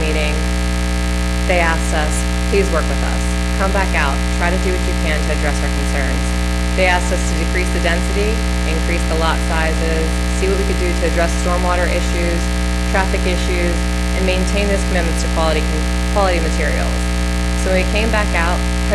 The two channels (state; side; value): identical; both; correlation 1.00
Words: they asked us, please work with us. Come back out, try to do what you can to address our concerns. They asked us to decrease the density, increase the lot sizes, see what we could do to address stormwater issues, traffic issues, and maintain those commitments to quality materials. So when we came back out,